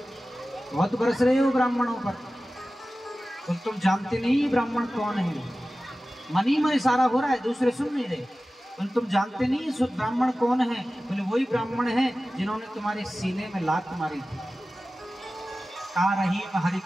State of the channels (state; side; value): normal; both; correlation 0.96